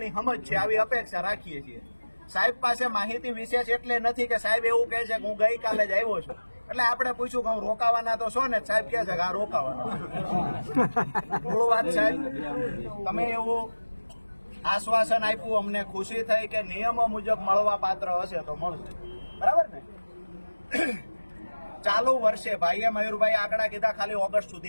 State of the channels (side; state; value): both; inverted; correlation -1.00